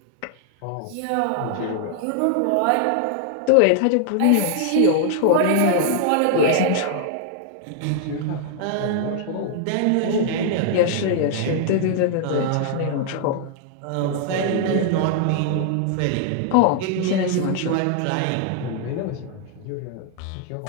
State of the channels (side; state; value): both; different; correlation 0.00